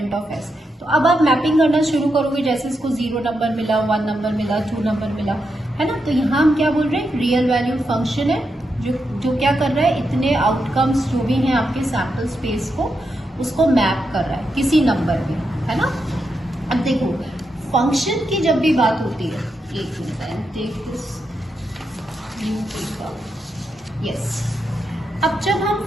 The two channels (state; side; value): normal; both; correlation 0.85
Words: of S। तो अब आप मैपिंग करना शुरू करोगे, जैसे इसको 0 नंबर मिला, 1 नंबर मिला, 2 नंबर मिला, है ना। तो यहाँ हम क्या बोल रहे हैं, रियल वैल्यूड फंक्शन है जो क्या कर रहा है, इतने आउटकम्स जो भी हैं आपके सैम्पल स्पेस को, उसको मैप कर रहा है किसी नंबर में, है ना। अब देखो फंक्शन की जब भी बात होती है, एक minute take this new paper, yes. अब जब हम